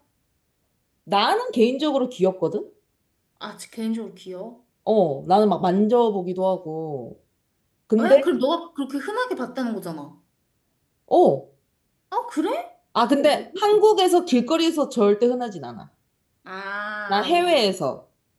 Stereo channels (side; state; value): both; identical; correlation 1.00